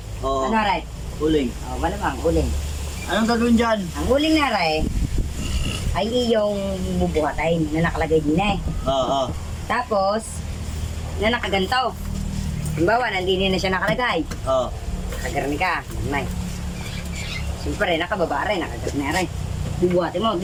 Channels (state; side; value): identical; both; correlation 1.00